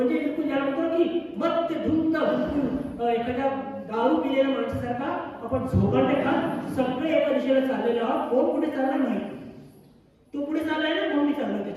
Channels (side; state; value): both; identical; correlation 1.00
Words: बिलकुल ज्याला म्हणतो की मत धुंद बिलकुल एखाद्या दारू पिलेल्या माणसासारखा आपण झोकांडे खात सगळे एका दिशेला चाललेले आहोत. कोण कुठे चालला नाही, तो पुढे चाललाय ना म्हणून मी चाललोय